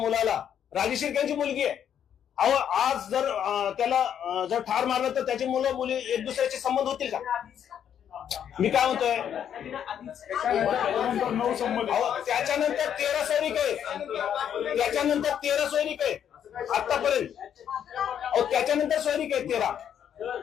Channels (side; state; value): right; quieter; 9.1 dB